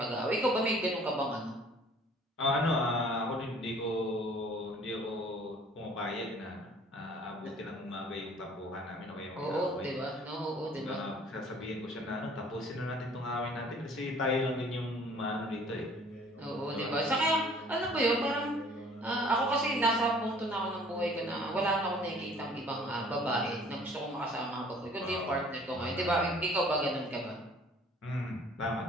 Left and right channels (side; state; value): both; normal; correlation 0.53